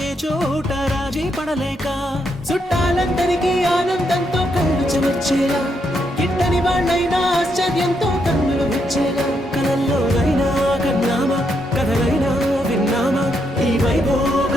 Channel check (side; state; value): both; normal; correlation 0.78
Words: ఏ చోట రాజీ పడలేక, చుట్టాలందరికీ ఆనందంతో కళ్ళు చెమర్చేలా, గిట్టని వాళ్ళైనా ఆశ్చర్యంతో కన్నులు విచ్చేలా, కలల్లోనైనా కన్నామా కథలైనా విన్నామా, ఈ